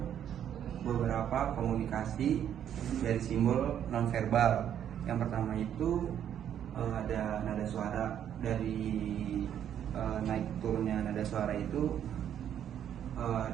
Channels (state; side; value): quieter; left; 9.7 dB